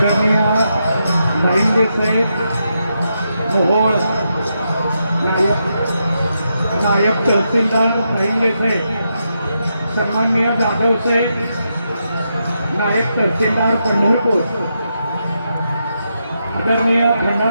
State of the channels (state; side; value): inverted; both; correlation -0.83